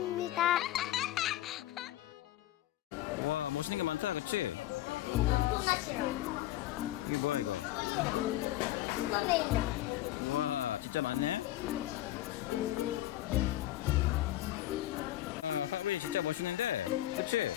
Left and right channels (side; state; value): right; quieter; 14.7 dB